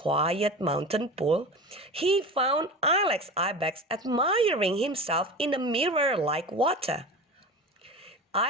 mountain pool, he found Ilex Ibex admiring himself in a mirror like water.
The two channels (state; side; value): normal; both; correlation 0.31